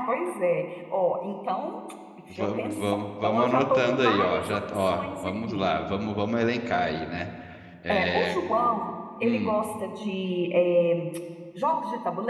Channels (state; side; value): identical; both; correlation 1.00